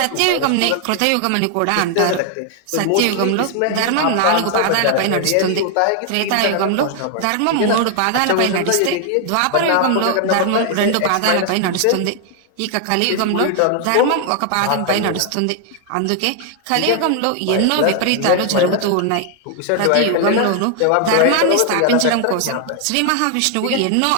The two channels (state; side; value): different; both; correlation 0.00